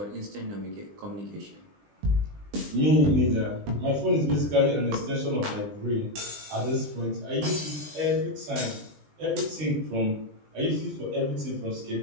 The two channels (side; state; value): left; late; 20 ms